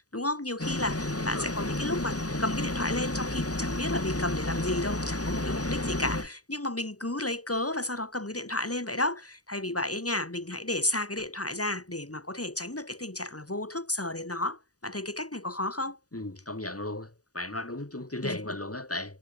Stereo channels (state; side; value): late; right; 0.67 ms